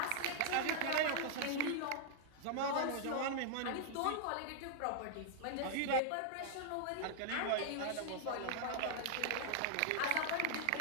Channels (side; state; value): both; different; correlation -0.01